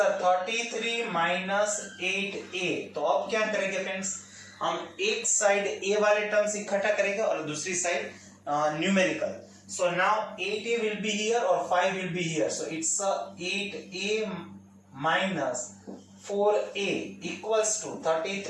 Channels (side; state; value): both; identical; correlation 1.00